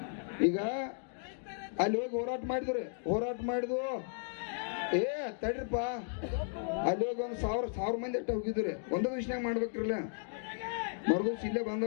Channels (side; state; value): right; silent; digital silence